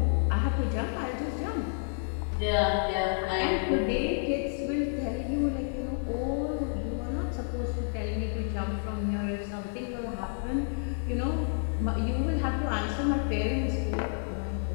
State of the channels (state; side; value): silent; right; digital silence